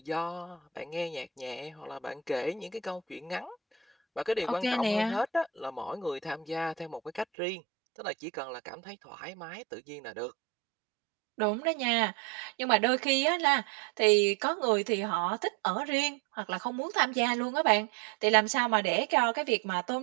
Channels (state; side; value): drops out; left; at 7.2 s